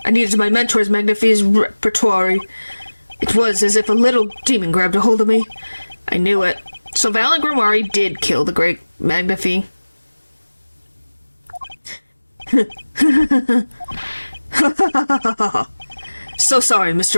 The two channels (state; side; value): inverted; both; correlation -1.00